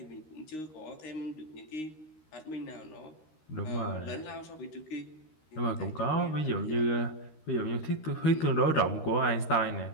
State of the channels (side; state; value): right; late; 13 ms